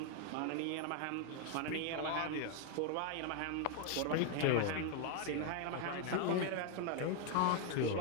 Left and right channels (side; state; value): both; different; correlation 0.00